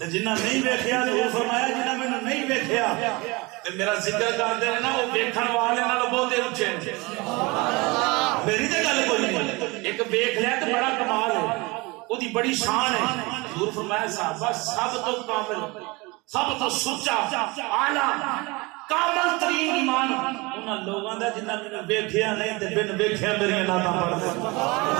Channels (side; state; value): left; quieter; 25.0 dB